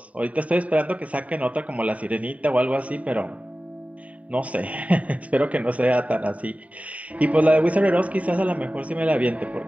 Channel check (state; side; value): late; left; 0.068 ms